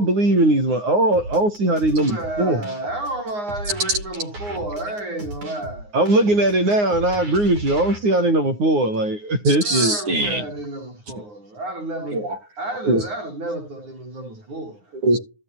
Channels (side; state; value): left; late; 9.6 ms